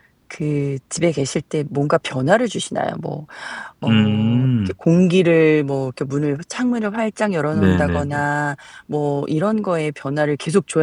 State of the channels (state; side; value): identical; both; correlation 1.00